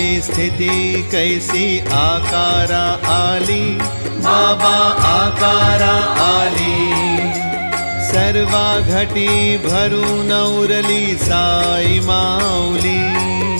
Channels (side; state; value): both; inverted; correlation -1.00